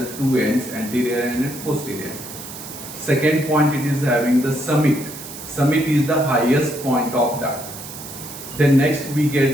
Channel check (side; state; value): right; noise; hiss, 12 dB below the sound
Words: ends, anterior and posterior. Second point, it is having the summit. Summit is the highest point of that. Then next we